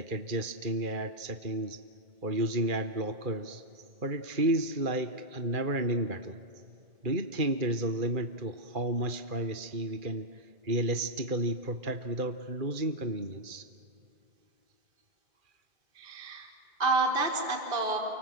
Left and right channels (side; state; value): left; late; 2.4 ms